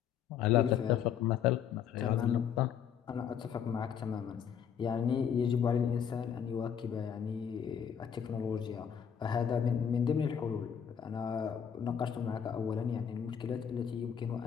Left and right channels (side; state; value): right; quieter; 8.1 dB